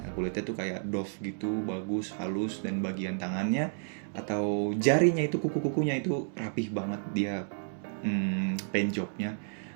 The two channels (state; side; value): silent; left; 57 dB below the other